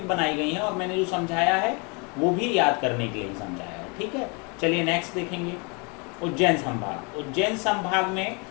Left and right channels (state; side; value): quieter; right; 32.0 dB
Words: बनाई गई है और मैंने जो समझाया है वो भी याद करने के लिए ही समझाया है। ठीक है, चलिए नेक्स्ट देखेंगे। उज्जैन संभाग। उज्जैन संभाग में